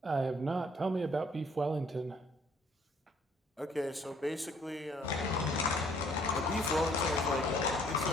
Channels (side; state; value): both; normal; correlation 0.62